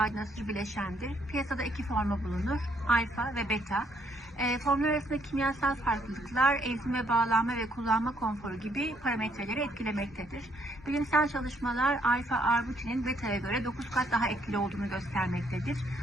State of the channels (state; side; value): normal; both; correlation 0.70